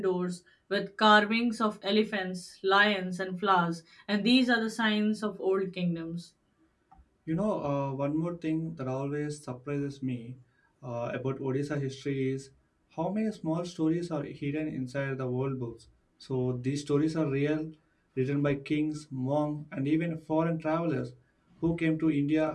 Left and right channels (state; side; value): identical; both; correlation 1.00